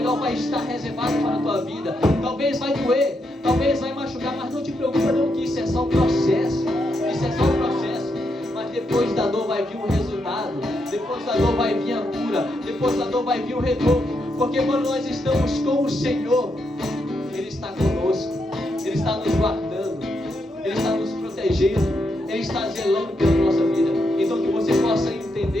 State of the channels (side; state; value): both; normal; correlation 0.81